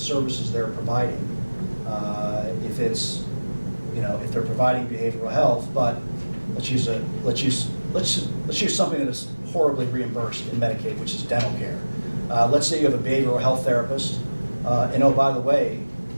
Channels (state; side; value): inverted; both; correlation -1.00